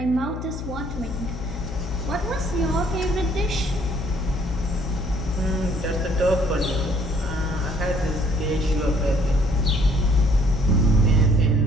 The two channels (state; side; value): noise; left; hum, 7 dB below the sound